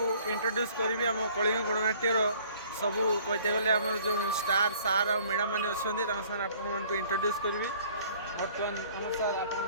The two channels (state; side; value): inverted; both; correlation -0.55